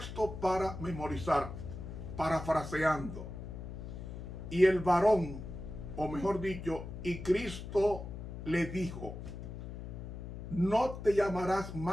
para memorizar, parafraseando. Y el varón, o mejor dicho, y Cristo le dijo: no te llamarás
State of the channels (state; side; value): noise; left; hum, 9 dB below the sound